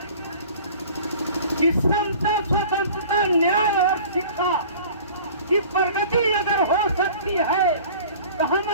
कि समता, स्वतंत्रता, न्याय और शिक्षा की प्रगति अगर हो सकती है तो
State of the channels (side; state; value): both; inverted; correlation -0.45